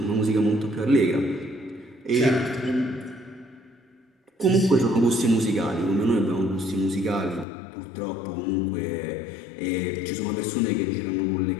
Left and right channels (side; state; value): right; drops out; at 7.5 s